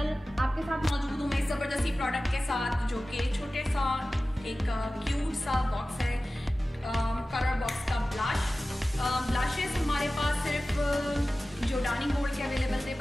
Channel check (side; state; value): both; normal; correlation 0.96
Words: आपके साथ मौजूद हूँ मैं इस ज़बरदस्ती प्रोडक्ट के साथ जो कि छोटे सा एक क्यूट सा बॉक्स है, कलर बॉक्स का ब्लशेस हमारे पास सिर्फ जोर्डानी गोल्ड के अवेलेबल थे,